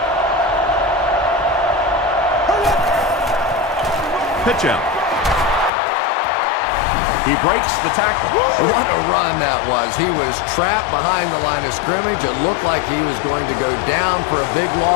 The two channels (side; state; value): right; drops out; at 5.7 s